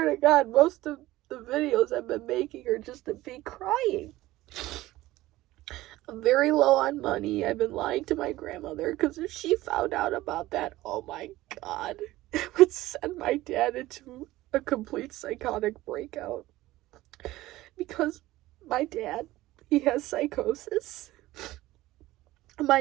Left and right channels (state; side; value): quieter; left; 17.1 dB